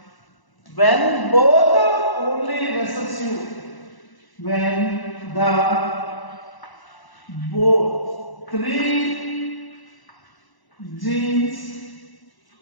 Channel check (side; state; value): right; late; 1.0 ms